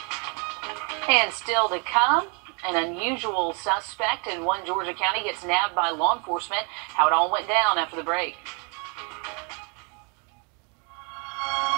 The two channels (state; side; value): quieter; left; 35.8 dB